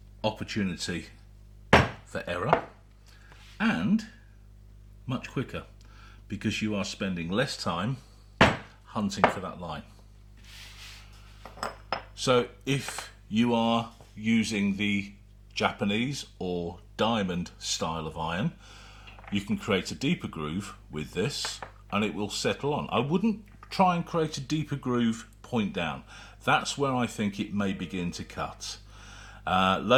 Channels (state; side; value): identical; both; correlation 1.00